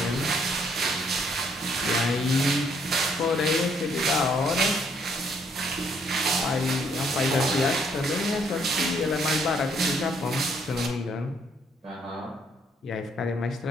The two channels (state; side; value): normal; both; correlation 0.68